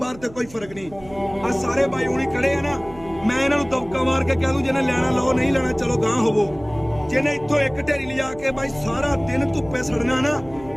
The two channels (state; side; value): noise; right; hum, 20 dB below the sound